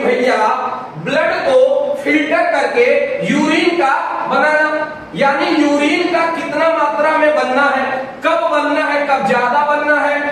भैया ब्लड को फिल्टर करके यूरिन का बनाना, यानी यूरिन का कितना मात्रा में बनना है, कब बनना है, कब ज्यादा बनना है,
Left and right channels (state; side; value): identical; both; correlation 1.00